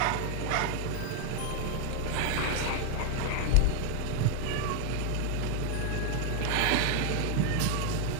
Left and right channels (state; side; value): different; both; correlation 0.00